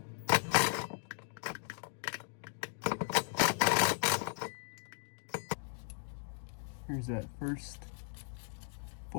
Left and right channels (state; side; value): silent; right; digital silence